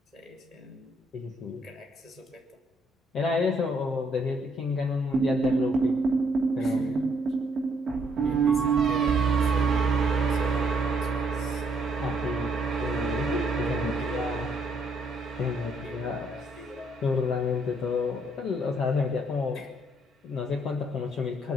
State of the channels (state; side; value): normal; both; correlation 0.70